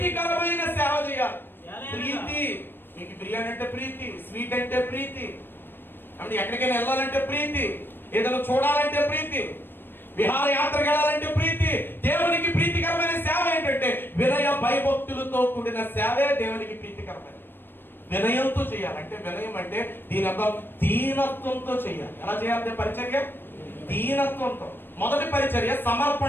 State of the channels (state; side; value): late; right; 0.098 ms